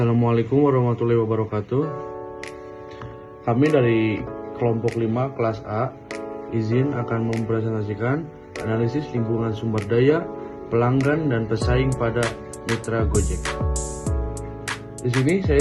warahmatullahi wabarakatuh. Kami dari kelompok 5 kelas A izin akan mempresentasikan analisis lingkungan sumber daya, pelanggan dan pesaing pada mitra Gojek. Di sini saya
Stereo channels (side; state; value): both; identical; correlation 1.00